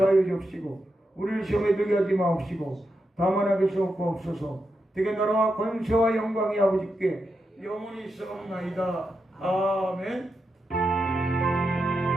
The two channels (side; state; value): both; normal; correlation 0.86